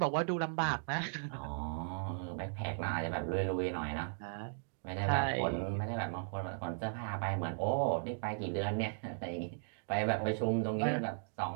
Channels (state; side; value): silent; left; digital silence